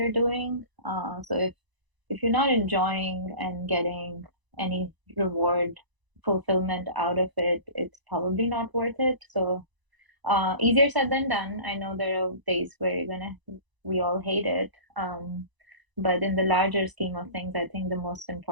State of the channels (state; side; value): late; left; 1.0 ms